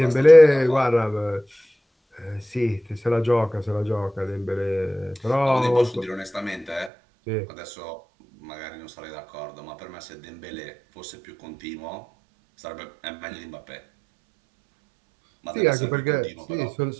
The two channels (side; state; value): left; drops out; at 6.9 s